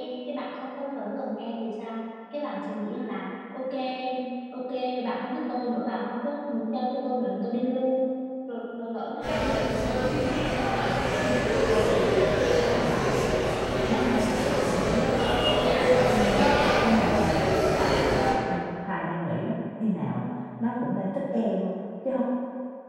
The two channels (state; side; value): identical; both; correlation 1.00